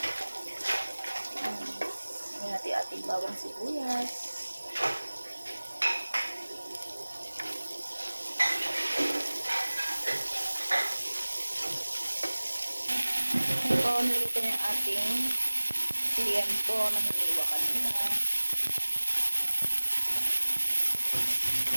Ngayon natin ating bawang sibuyas. Ngayon po, nilito yung ating tiempo na hiniwa kanina.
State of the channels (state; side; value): inverted; both; correlation -1.00